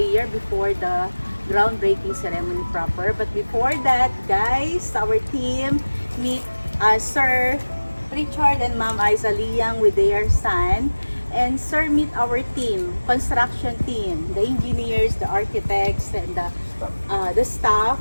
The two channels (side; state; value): both; inverted; correlation -1.00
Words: before the groundbreaking ceremony proper. But before that, guys, our team meet Sir Richard and Ma'am Isa Liang with their son. And Sir, meet our team, construction team, the engineers, the architects, and the staff,